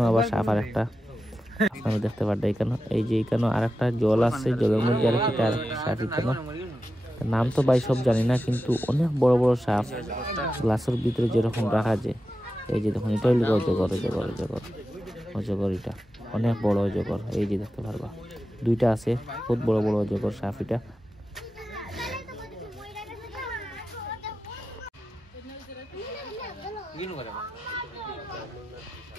আবার সাপ আর একটা আপনারা দেখতে পারবেন এখানে। এই যে এখানে আরেকটা জল আছে, জলের মধ্যে আরেকটা সাপ এখানে। নাম তো ভাই সব জানি না, কিন্তু অনেক বড় বড় সাপ গ্লাসের ভিতরে যেরকম রাখা যায়। এই যে দেখুন, এটা হইল অজগর, এটা অনেক বড় অজগর। এই যে দেখতে পারবা দুইটা আছে, বহুত বড় বড় অজগর সাপ এটা।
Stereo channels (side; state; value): both; normal; correlation 0.91